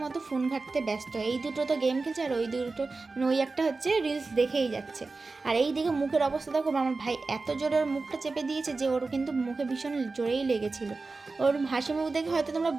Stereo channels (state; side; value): quieter; left; 3.8 dB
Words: মতো ফোন ঘাঁটতে ব্যস্ত। এই দুটো তো গেম খেলছে, আর ওই দুটো, মানে ওই একটা হচ্ছে রিলস দেখেই যাচ্ছে। আর এই দিকে মুখের অবস্থা দেখো, আমার ভাই এত জোরে ওর মুখটা চেপে দিয়েছে যে ওর কিন্তু মুখে ভীষণ জোরেই লেগেছিল। ওর হাসি মুখ দেখে হয়তো তোমরা